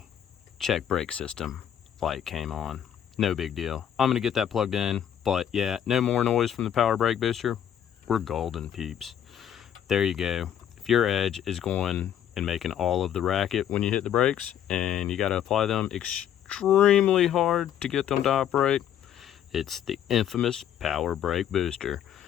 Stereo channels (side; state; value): right; quieter; 9.8 dB